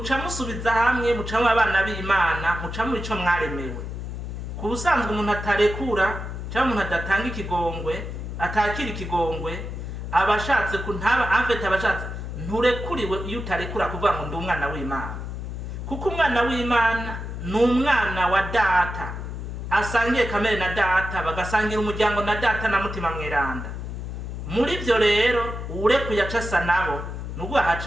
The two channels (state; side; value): noise; left; hum, 7 dB below the sound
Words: mucamwe abana b'Imana, mucamwe ico mwaremewe. Ku busanzwe umuntu atarekura cyangwa umuntu adatanga ikigongwe, atakira ikigongwe, abashatse kuntaba amfete, abashatse nturekuriwe iyo utarekura kuvuga ngo ndi umwana w'Imana. Kuko umwana w'Imana ni umwana wa data, asangiye kamere na data, bagasangira umuryango na data na mutima mweranda. Muri byo rero urekuye acasa nabo nubwo